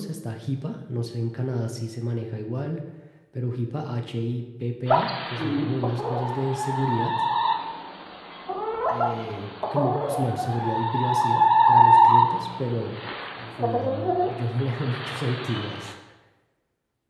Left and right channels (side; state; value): both; identical; correlation 1.00